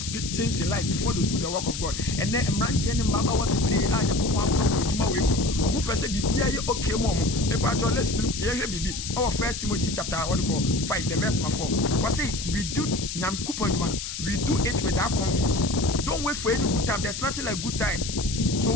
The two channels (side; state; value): left; noise; hiss, 6 dB below the sound